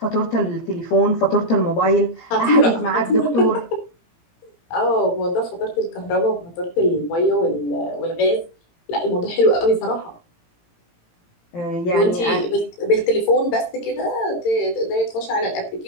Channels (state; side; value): late; right; 17 ms